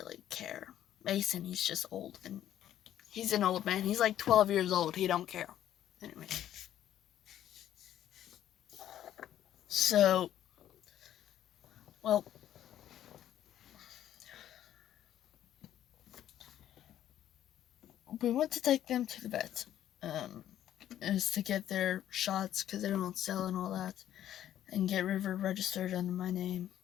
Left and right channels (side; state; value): right; quieter; 11.5 dB